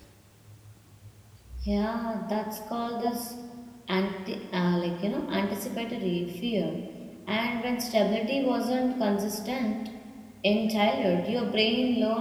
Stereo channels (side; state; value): both; identical; correlation 1.00